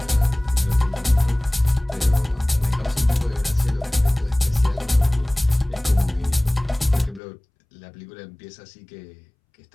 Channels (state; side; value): drops out; right; at 7.2 s